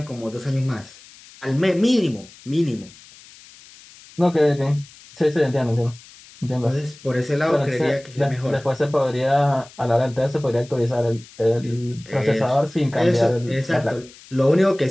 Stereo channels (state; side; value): noise; left; hiss, 22 dB below the sound